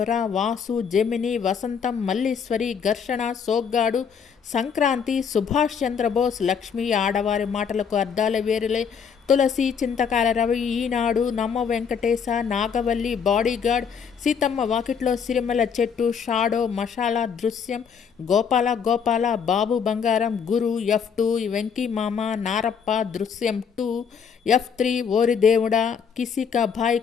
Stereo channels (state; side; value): quieter; right; 6.8 dB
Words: వాసు, జెమిని, వసంతం, మల్లీశ్వరి, ఘర్షణ, సోగ్గాడు, సంక్రాంతి, సుభాష్ చంద్రబోస్, లక్ష్మి, ఆడవారి మాటలకు అర్థాల వేరులే, తులసి, చింతకాల రవి, ఈనాడు, నమ్మ వెంకటేశ, నాగవల్లి, బాడీగార్డ్, సీతమ్మ వాకిట్లో సిరిమల చెట్టు, షాడో, మషాలా, దృశ్యం, గోపాల గోపాల, బాబు బంగారం, గురు, F2, వెంకీ మామ, నారప్ప, దృశ్యం 2, F3, ఓరి దేవుడా, కిసి కా భాయ్